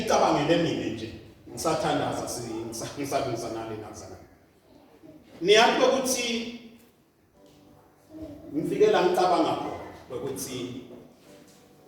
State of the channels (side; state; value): both; identical; correlation 1.00